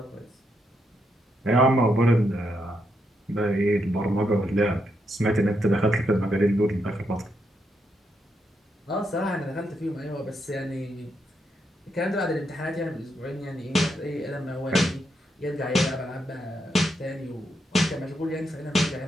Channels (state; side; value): normal; both; correlation 0.80